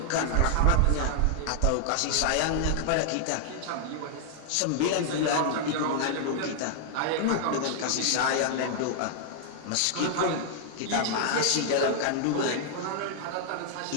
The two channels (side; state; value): both; different; correlation -0.01